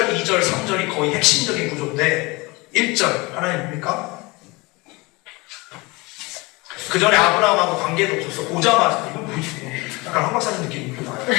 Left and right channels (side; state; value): right; quieter; 24.6 dB